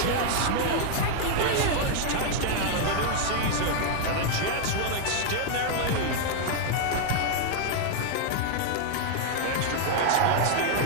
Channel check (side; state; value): both; different; correlation 0.00